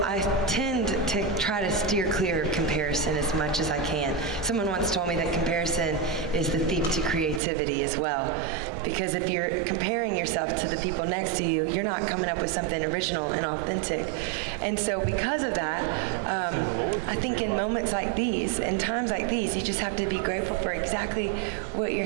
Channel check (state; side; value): drops out; left; at 7.4 s